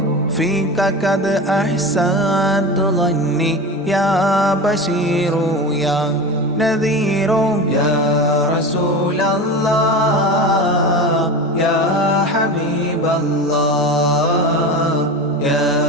فيك قد أحسنت ظني يا بشير يا نذير يا رسول الله يا حبيب الله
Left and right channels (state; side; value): normal; both; correlation 0.27